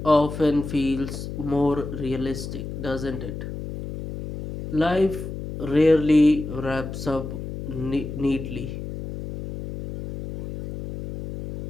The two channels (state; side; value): noise; left; hum, 8 dB below the sound